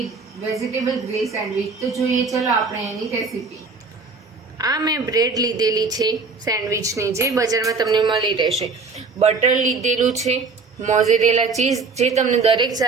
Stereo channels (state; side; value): quieter; left; 4.4 dB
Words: વેજીટેબલ ગ્રીલ સેન્ડવિચ. તો જોઈએ ચલો આપણે એની રેસીપી. આ મેં બ્રેડ લીધેલી છે સેન્ડવિચની, જે બજારમાં તમને મળી રહેશે. બટર લીધેલું છે, મોઝરેલા ચીઝ, જે તમને દરેક